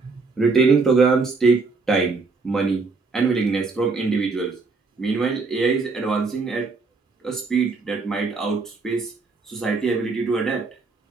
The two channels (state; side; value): quieter; left; 4.2 dB